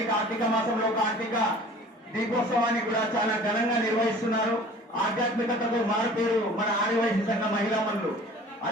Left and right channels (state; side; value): normal; both; correlation 0.46